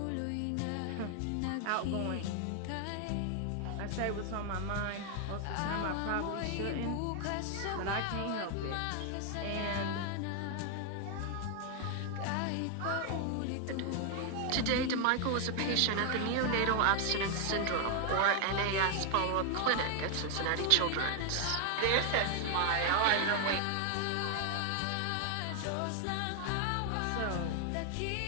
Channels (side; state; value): both; different; correlation 0.00